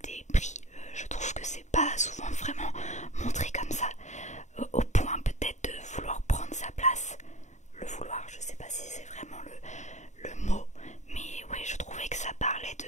pris. Je trouve que c'est pas souvent vraiment montré comme ça, au point peut-être de vouloir prendre sa place. Le vouloir, je sais pas si c'est vraiment le mot, mais ouais, je trouvais que ça parlait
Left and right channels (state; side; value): late; right; 0.34 ms